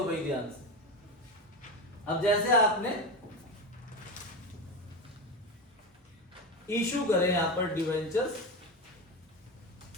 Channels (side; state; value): both; normal; correlation 0.19